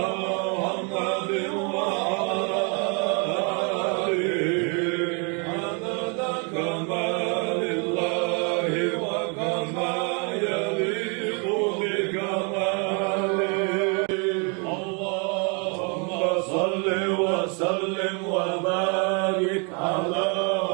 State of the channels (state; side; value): quieter; left; 35.3 dB